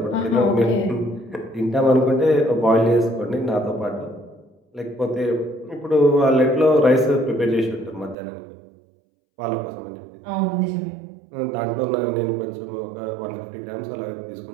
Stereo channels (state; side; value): drops out; left; at 8.2 s